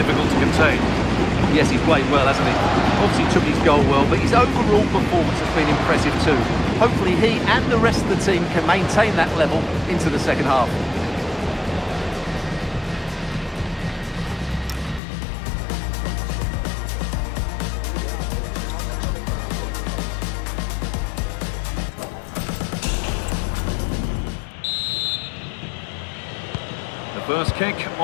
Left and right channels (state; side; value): drops out; right; at 15.0 s